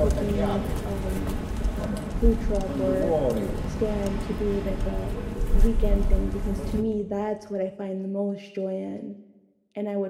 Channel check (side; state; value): both; identical; correlation 1.00